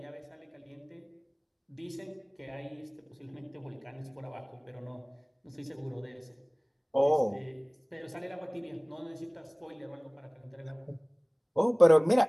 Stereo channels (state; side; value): identical; both; correlation 1.00